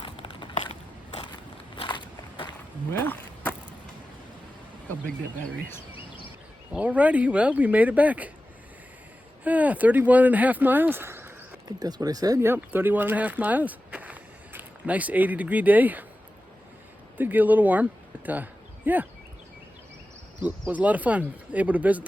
Well, look how big that battery is. Alrighty, well, we made it back. 31.5 miles. I think that's what I said. Yep, 31.5 miles. Nice 80-degree day. Did get a little warm, but yeah. It was a lot of fun, able to visit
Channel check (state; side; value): normal; both; correlation 0.94